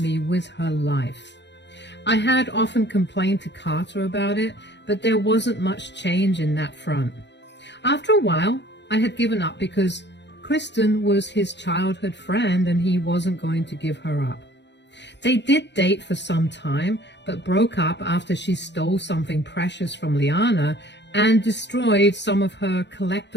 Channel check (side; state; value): right; late; 0.51 ms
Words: with her life. I had often complained to Carter about it, but there wasn't much change in that front. After a while, I had given up because Kristen was his childhood friend and he wasn't going to give her up. They did date for some time, but broke up after she stole something precious from Liana and destroyed some of her